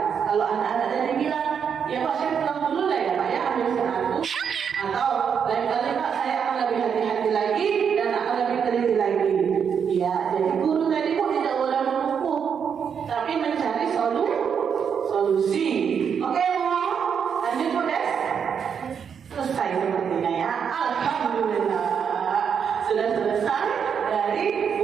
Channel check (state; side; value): quieter; left; 7.2 dB